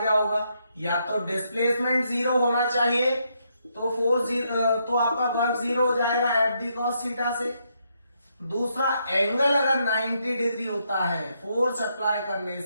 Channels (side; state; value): both; inverted; correlation -0.77